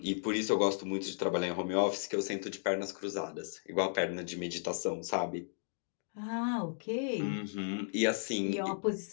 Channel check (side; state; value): right; silent; digital silence